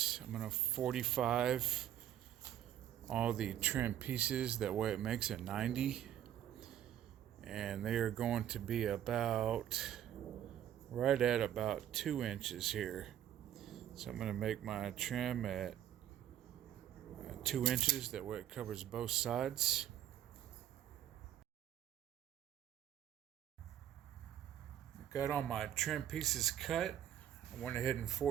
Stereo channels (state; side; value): quieter; left; 11.0 dB